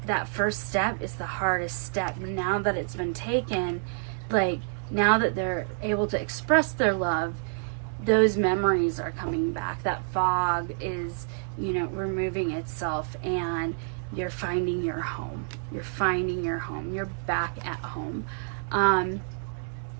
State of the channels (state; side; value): silent; left; 59 dB below the other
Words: that first step is the hardest step. Now that it's been taken, now that they're able to express their love, those memories are coming back. That fog is, removing itself, and you're finding your home. You're finding your home. You're back at home. You